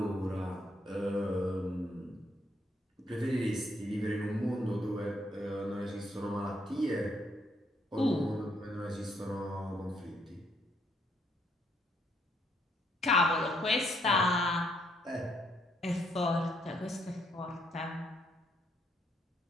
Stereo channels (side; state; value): both; normal; correlation 0.72